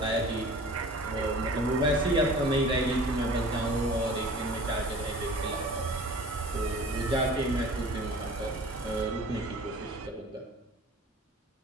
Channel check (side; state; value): both; normal; correlation 0.44